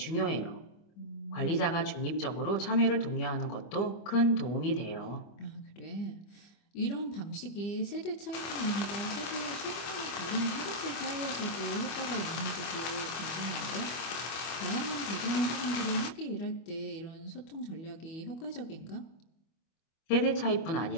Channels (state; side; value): late; right; 25 ms